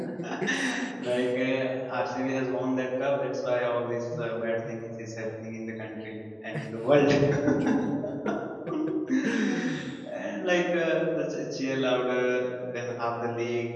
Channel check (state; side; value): identical; both; correlation 1.00